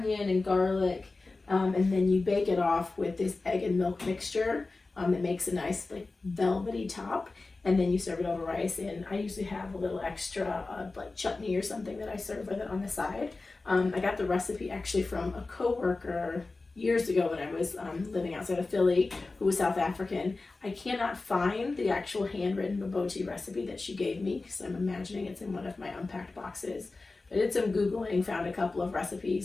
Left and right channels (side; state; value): right; quieter; 3.5 dB